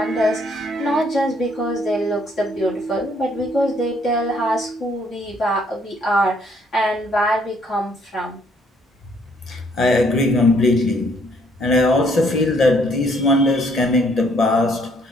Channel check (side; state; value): both; normal; correlation 0.66